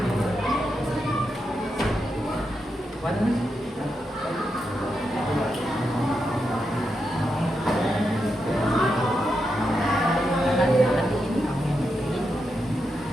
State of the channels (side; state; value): both; normal; correlation 0.85